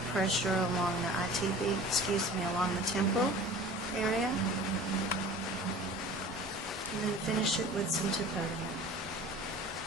pressure along the along the temporal area. And then finish it with some tapodium,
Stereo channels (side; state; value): both; normal; correlation 0.42